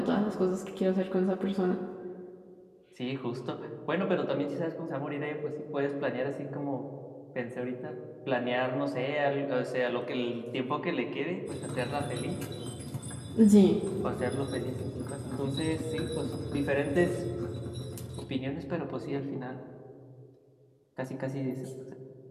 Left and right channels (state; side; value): identical; both; correlation 1.00